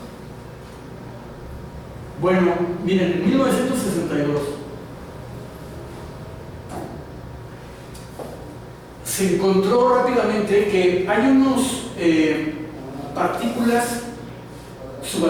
Bueno, miren, en 1962 se encontró rápidamente que hay unos partículas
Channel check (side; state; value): both; identical; correlation 1.00